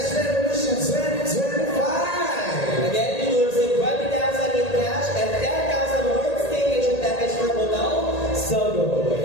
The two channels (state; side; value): late; right; 1.8 ms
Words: Revolution 2025! Again, you will receive 20,000 in cash and 10,000 worth staycation package for Hotel Sogo.